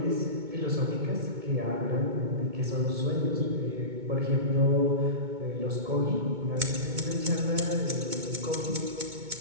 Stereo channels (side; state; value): left; late; 2.2 ms